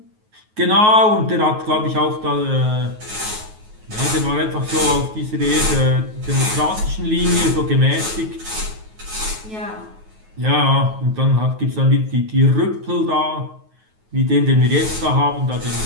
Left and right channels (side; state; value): left; late; 9.3 ms